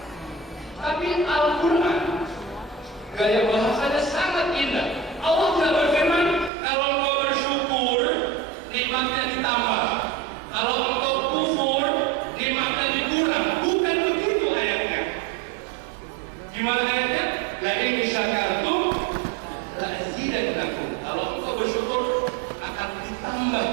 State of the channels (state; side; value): drops out; left; at 6.5 s